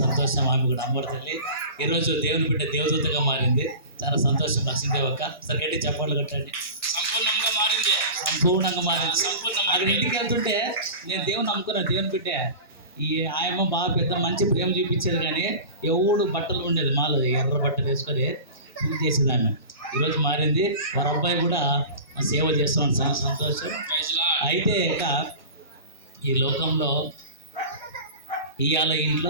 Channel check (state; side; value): inverted; both; correlation -0.35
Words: సంతోషం. ఆమె కూడా అమ్మోడి తల్లి ఈరోజు దేవుని బిడ్డ దేవదూతగా మారింది. చాలా సంతోషం. లక్ష్మీదేవక్క సరే గట్టి చప్పట్లు కొట్టండి. సంపూర్ణంగా మారింది. అక్కడ ఇంటికి వెళ్తుంటే నేను దేవుని నమ్ముకున్నాను. దేవుని బిడ్డ ఈ ఆయమ్మ బాగా పెద్ద మంచి ప్రేమ చూపించేది, కానీ ఎవడు బట్టలు ఉండేది మాలో ఎర్ర బట్టలు వేసుకొని పూజ చేసేది ఆమె. ఈరోజు మారింది. వారి అబ్బాయి కూడా సేవ చేస్తున్నాడు. చాలా సంతోషం. అయితే ఇక ఈ లోకంలో ఇవాళ